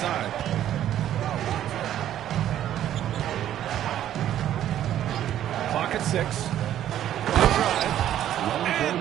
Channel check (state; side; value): quieter; left; 11.5 dB